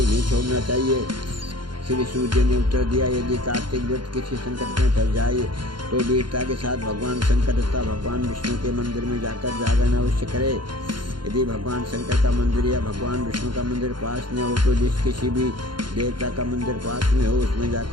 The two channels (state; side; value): late; left; 0.72 ms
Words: नहीं छोड़ना चाहिए। श्री सूर्य ने उत्तर दिया, यदि कार्तिक व्रत किसी संकट में फंस जाए तो वीरता के साथ भगवान शंकर तथा भगवान विष्णु के मंदिर में जाकर जागरण अवश्य करे। यदि भगवान शंकर का मंदिर या भगवान विष्णु का मंदिर पास में हो तो जिस किसी भी देवता का मंदिर पास में हो उसमें